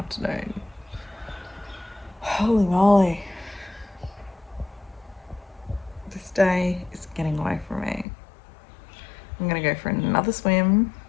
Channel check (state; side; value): drops out; right; at 8.1 s